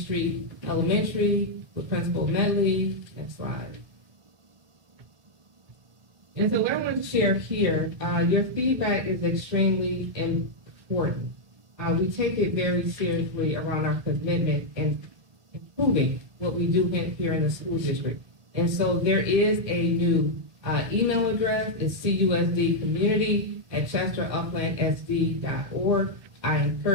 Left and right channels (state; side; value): late; left; 1.4 ms